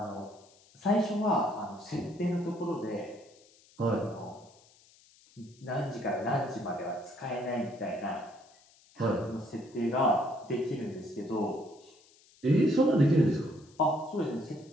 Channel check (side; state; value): left; noise; hiss, 28 dB below the sound